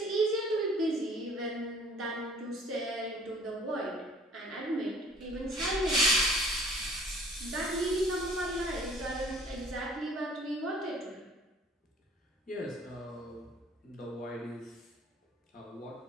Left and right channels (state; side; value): normal; both; correlation 0.52